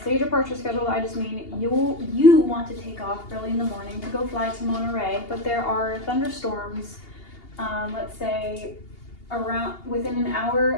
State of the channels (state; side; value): late; right; 2.8 ms